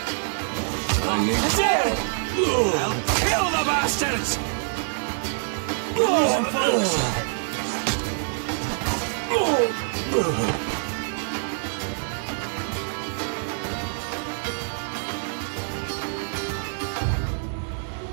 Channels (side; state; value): left; silent; 61 dB below the other